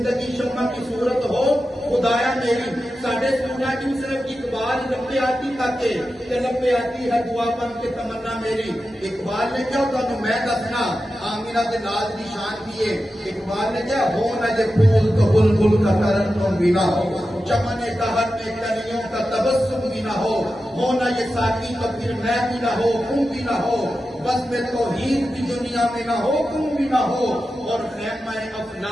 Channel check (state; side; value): normal; both; correlation 0.92